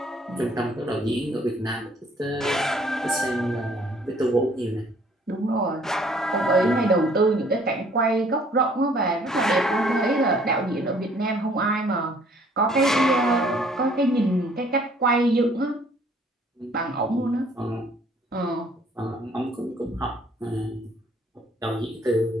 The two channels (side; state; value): both; normal; correlation 0.59